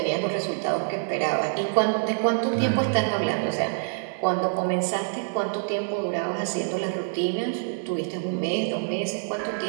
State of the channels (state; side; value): silent; left; 59 dB below the other